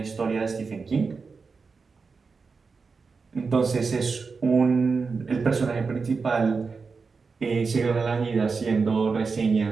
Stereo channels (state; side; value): quieter; left; 4.8 dB